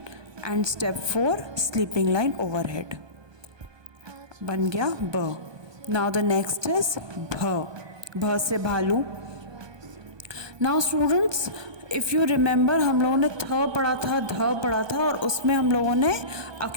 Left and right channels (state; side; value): late; left; 1.2 ms